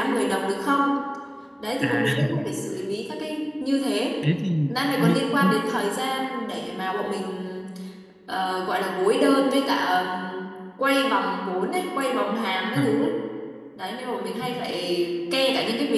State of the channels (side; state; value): both; identical; correlation 1.00